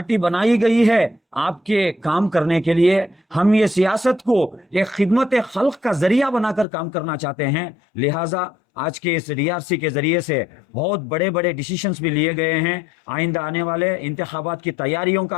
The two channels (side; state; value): right; drops out; at 6.7 s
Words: बनाई गई है आपके काम करने के लिए। हम ये सियासत को एक खिदमत खल्क का जरिया बनाकर काम करना चाहते हैं। लिहाजा आज के इस डीआरसी के जरिए से बहुत बड़े बड़े डिसीजंस भी लिए गए हैं। आइंदा आने वाले इंतखाबात की तैयारियों